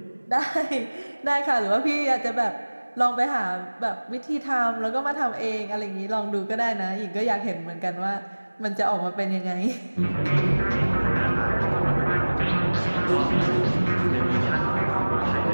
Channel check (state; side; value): inverted; both; correlation -1.00